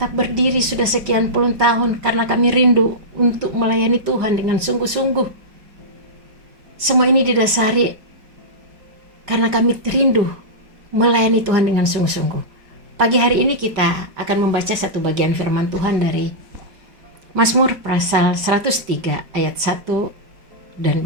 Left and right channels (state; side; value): late; left; 5.0 ms